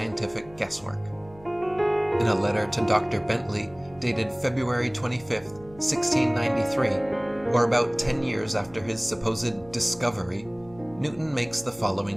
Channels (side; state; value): right; noise; hum, 23 dB below the sound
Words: guesswork? In a letter to Dr. Bentley, dated February 25th, 1693, or about 10 years after his supposed discovery, Newton makes the